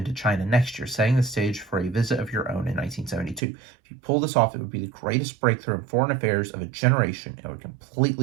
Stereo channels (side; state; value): left; drops out; at 3.4 s